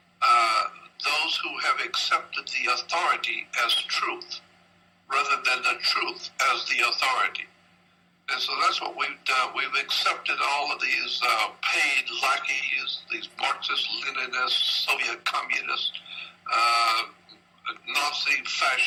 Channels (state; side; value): identical; both; correlation 1.00